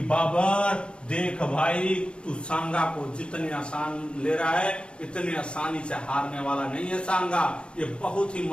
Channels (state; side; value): late; right; 0.056 ms